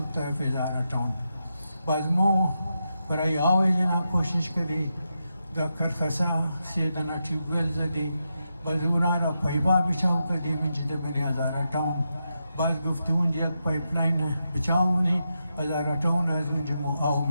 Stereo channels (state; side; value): inverted; both; correlation -0.86